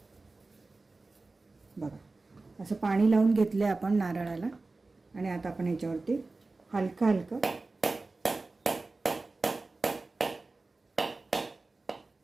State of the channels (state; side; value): quieter; left; 3.5 dB